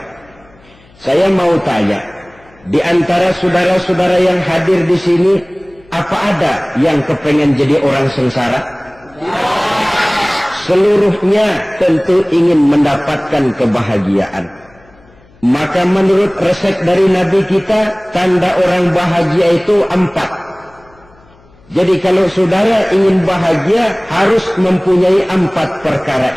Saya mau tanya, di antara saudara-saudara yang hadir di sini, apa ada yang kepengen jadi orang sengsara? Seluruhnya tentu ingin mendapatkan kebahagiaan. Maka menurut resep dari Nabi kita, tanda orang bahagia itu 4. Jadi kalau saudara ingin bahagia, harus mempunyai 4 perkara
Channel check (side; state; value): left; noise; hum, 29 dB below the sound